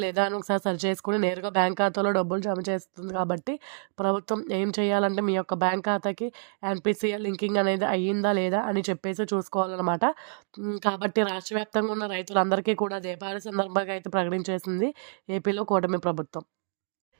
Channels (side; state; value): left; silent; 60 dB below the other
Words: లేదా అని ఒకసారి సర్చ్ చేసుకొని నేరుగా బ్యాంక్ ఖాతాలో డబ్బులు జమ చేస్తుంది కాబట్టి ప్రభుత్వం ఏం చేయాలంటే మీ యొక్క బ్యాంక్ ఖాతాకి ఎన్‌పీసీఐ లింకింగ్ అనేది అయ్యిందా లేదా అని చెప్పేసి చూసుకోవాలన్నమాట. కాబట్టి రాష్ట్ర వ్యాప్తంగా ఉన్న రైతులందరికీ కూడా దీపావళి సందర్భంగా అయితే ప్రకటించేసింది ఏపీలో కూటమి ప్రభుత్వం.